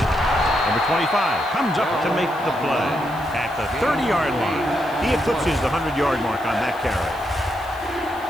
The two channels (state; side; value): noise; left; hiss, 23 dB below the sound